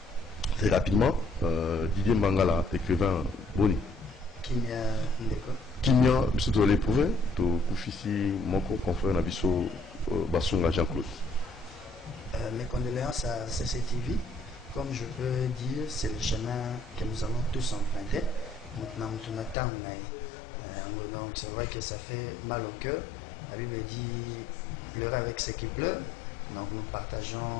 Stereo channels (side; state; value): right; drops out; at 19.6 s